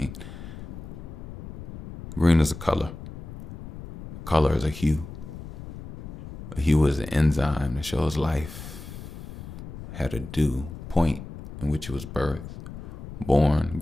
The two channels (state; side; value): noise; left; rumble, 11 dB below the sound